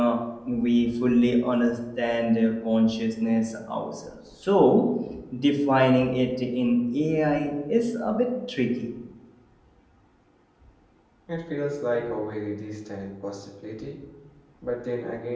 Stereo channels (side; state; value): both; identical; correlation 1.00